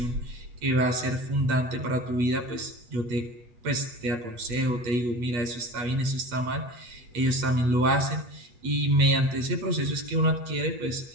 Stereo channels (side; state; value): left; late; 8.2 ms